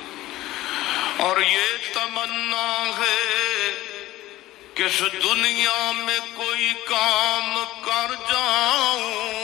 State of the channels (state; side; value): quieter; right; 16.3 dB